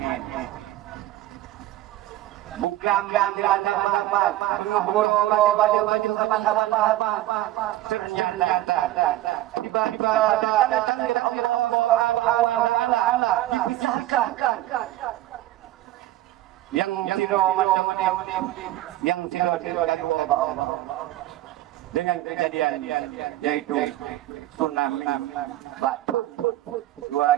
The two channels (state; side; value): quieter; left; 15.3 dB